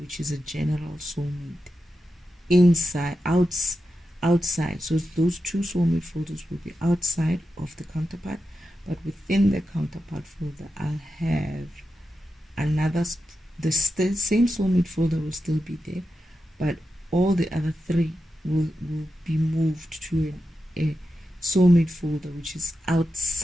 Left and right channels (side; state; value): both; normal; correlation 0.89